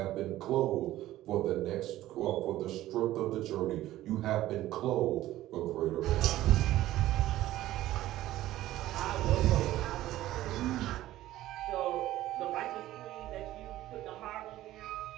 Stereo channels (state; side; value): quieter; left; 14.9 dB